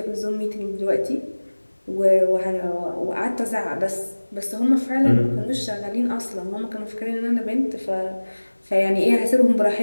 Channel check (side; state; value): both; inverted; correlation -1.00